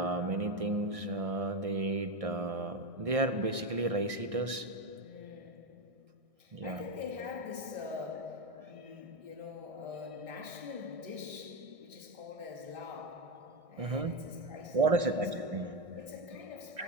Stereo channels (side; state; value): left; late; 1.6 ms